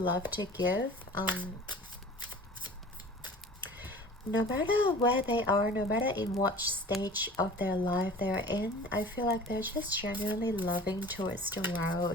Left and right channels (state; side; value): normal; both; correlation 0.42